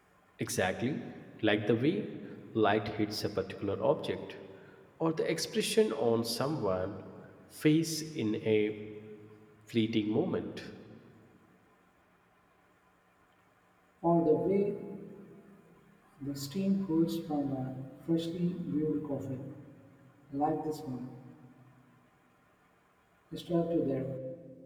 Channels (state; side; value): identical; both; correlation 1.00